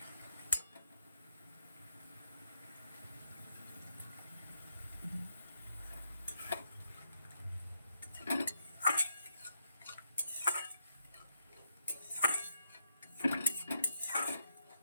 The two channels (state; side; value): inverted; both; correlation -0.79